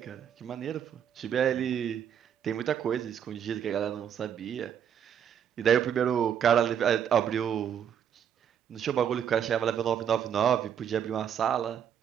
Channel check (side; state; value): left; quieter; 8.7 dB